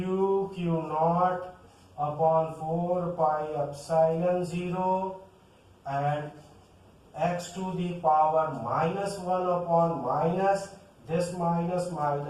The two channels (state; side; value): identical; both; correlation 1.00